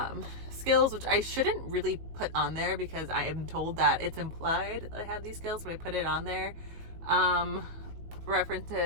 skills, which I shouldn't really put on there because I am told that it's implied that I have these skills, but I put it on there.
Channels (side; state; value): left; late; 18 ms